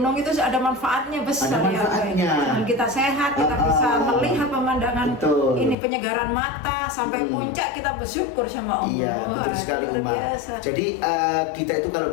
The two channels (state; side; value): drops out; right; at 5.8 s